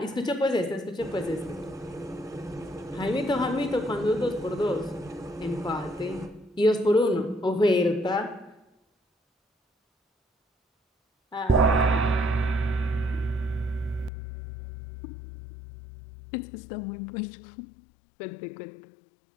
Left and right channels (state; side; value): drops out; right; at 14.1 s